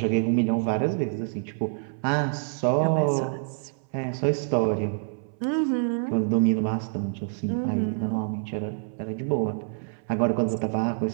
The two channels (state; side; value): silent; left; 60 dB below the other